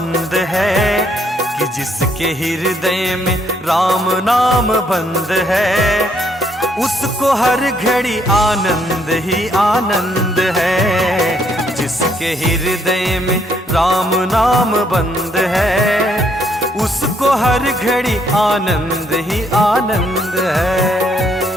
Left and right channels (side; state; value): both; normal; correlation 0.70